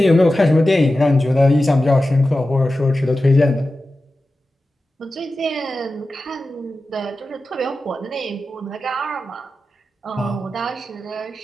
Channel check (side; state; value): both; normal; correlation 0.94